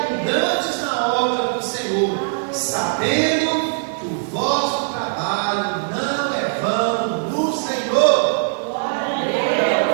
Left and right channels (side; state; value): left; silent; digital silence